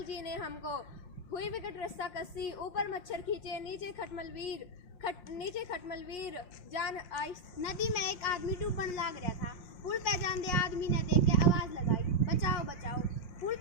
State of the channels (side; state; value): right; late; 5.7 ms